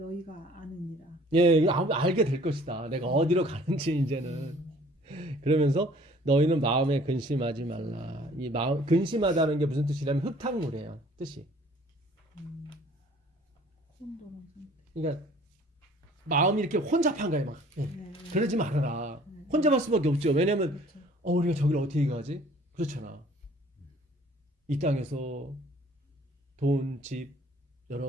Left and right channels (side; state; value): both; normal; correlation 0.54